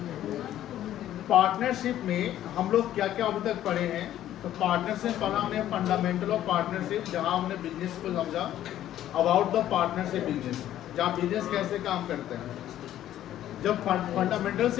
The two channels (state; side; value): quieter; right; 12.3 dB